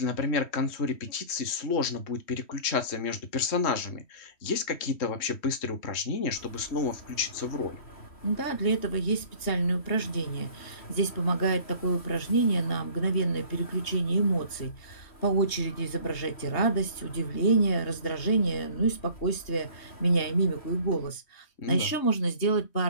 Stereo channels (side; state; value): right; late; 3.1 ms